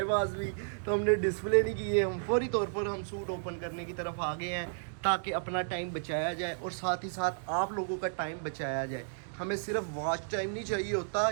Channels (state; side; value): silent; left; digital silence